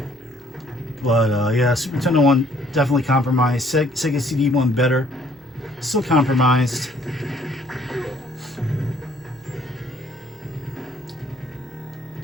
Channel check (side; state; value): right; noise; hum, 27 dB below the sound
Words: But yeah, Super Nintendo one definitely compromised. Sega CD one better. Still compromised.